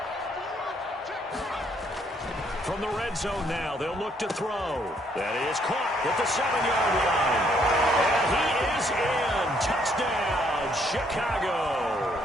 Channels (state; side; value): normal; both; correlation 0.69